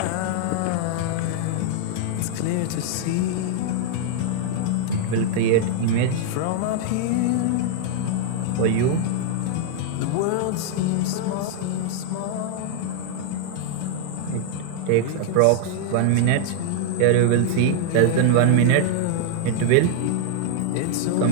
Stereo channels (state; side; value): different; both; correlation 0.00